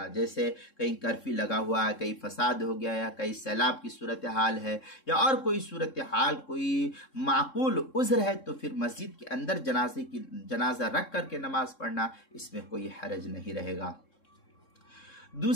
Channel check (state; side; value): late; right; 3.7 ms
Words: जैसे कहीं कर्फ्यू लगा हुआ है, कहीं फसाद हो गया या कहीं सैलाब की सूरत हाल है या और कोई सूरत हाल, कोई माकूल उज़्र है, तो फिर मस्जिद के अंदर जनाजा रख करके नमाज पढ़ना, इसमें कोई हरज नहीं रहेगा।